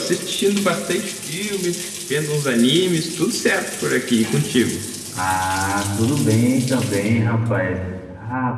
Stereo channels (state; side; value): identical; both; correlation 1.00